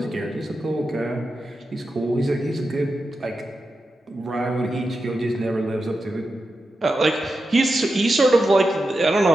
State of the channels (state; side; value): normal; both; correlation 0.90